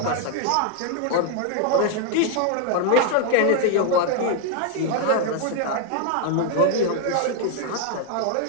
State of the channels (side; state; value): both; different; correlation 0.00